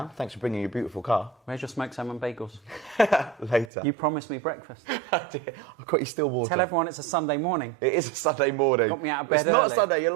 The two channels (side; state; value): left; drops out; at 3.7 s